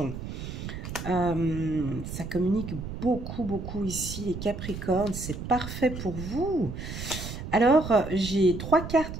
Ça communique beaucoup ici, les Capricornes. C'est parfait pour vous. Alors, j'ai 3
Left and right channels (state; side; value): noise; right; rumble, 8 dB below the sound